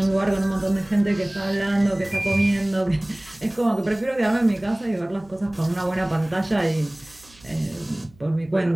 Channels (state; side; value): noise; right; hum, 27 dB below the sound